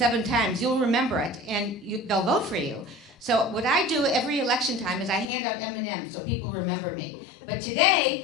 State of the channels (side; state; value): right; drops out; at 5.3 s